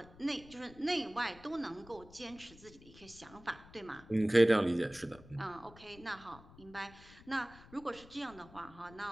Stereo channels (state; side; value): noise; left; rumble, 21 dB below the sound